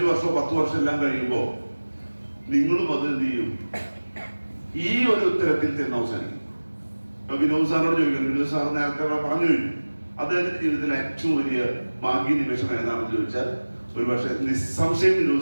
വർഷമോ 10 വർഷം എല്ലാം കഴിയുമ്പോൾ നിങ്ങളും അത് എന്ത് ചെയ്യും, ഈ ഒരു ഉത്തരത്തിൽ ചെന്ന് അവസാനിക്കും. ഇപ്പൊ വിനോദ് സാറിനോട് ചോദിക്കണം, വിനോദ് സാർ നേരത്തെ പറഞ്ഞു കഴിഞ്ഞു, അദ്ദേഹത്തിന്റെ ജീവിതത്തിലെ ഏറ്റവും വലിയ ഭാഗ്യ നിമിഷം ഏതാണെന്ന് ചോദിച്ചാൽ ഒരു പക്ഷെ നിസ്സംശയം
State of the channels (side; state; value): both; inverted; correlation -1.00